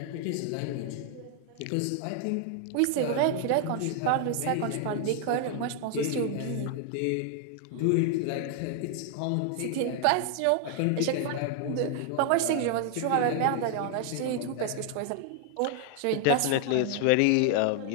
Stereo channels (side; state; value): both; different; correlation 0.00